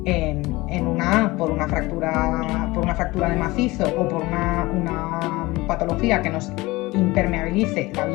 por una fractura de macizo o por una patología que nos impermeabilice la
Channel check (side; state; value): right; quieter; 21.1 dB